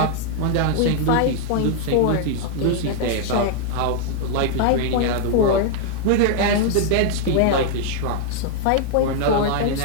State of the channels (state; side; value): different; both; correlation 0.00